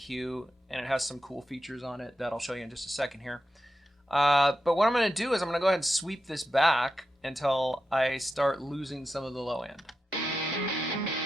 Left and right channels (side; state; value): both; normal; correlation 0.89